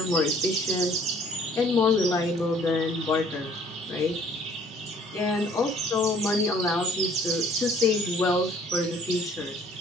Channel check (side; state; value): both; normal; correlation 0.57